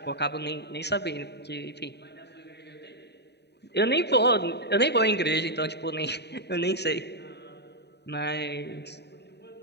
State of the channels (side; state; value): right; late; 0.49 ms